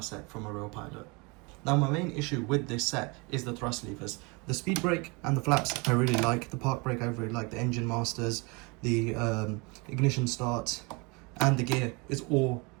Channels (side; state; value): left; quieter; 28.7 dB